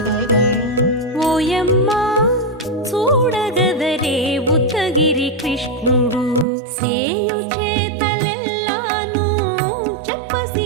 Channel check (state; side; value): drops out; left; at 6.5 s